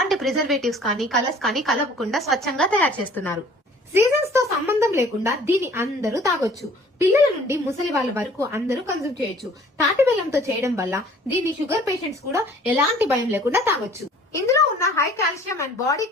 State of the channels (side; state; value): both; normal; correlation 0.52